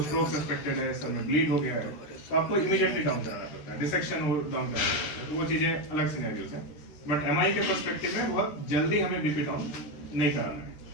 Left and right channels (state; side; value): late; right; 13 ms